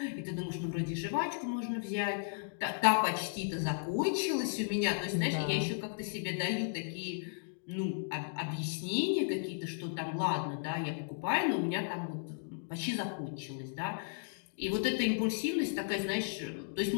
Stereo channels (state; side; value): silent; right; digital silence